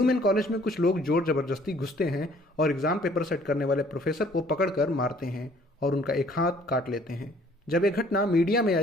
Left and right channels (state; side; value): normal; both; correlation 0.58